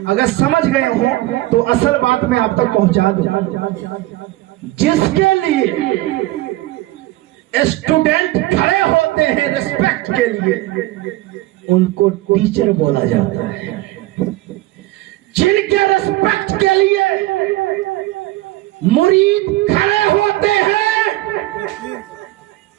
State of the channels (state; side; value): quieter; left; 17.6 dB